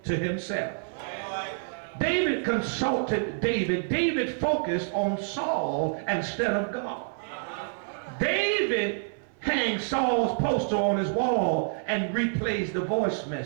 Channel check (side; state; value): left; silent; 57 dB below the other